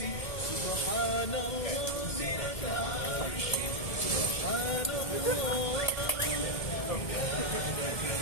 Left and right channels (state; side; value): late; right; 1.7 ms